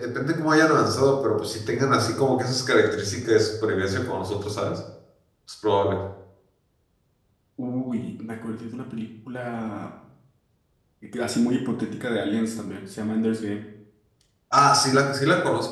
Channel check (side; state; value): both; identical; correlation 1.00